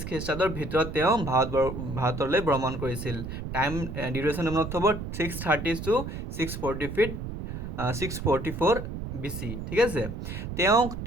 খ্ৰীষ্টাব্দৰ ভিতৰত তেওঁ ভাৰতলৈ ভ্ৰমণ কৰিছিল। টাইম ডিউৰেশ্যন মনত থ'ব 630 to 644 BC। ঠিক আছে, তেওঁক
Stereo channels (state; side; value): noise; right; rumble, 6 dB below the sound